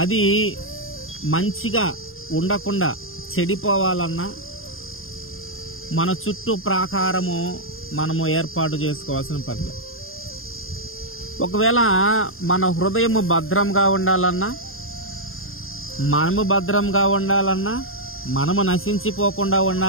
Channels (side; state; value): right; late; 0.60 ms